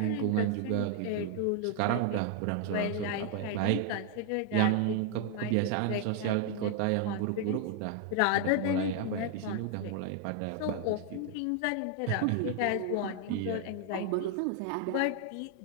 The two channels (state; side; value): different; both; correlation 0.00